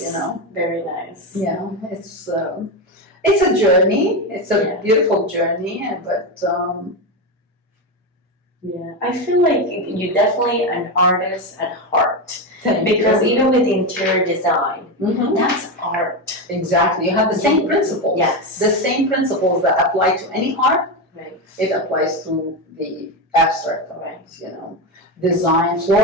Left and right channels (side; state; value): both; normal; correlation 0.13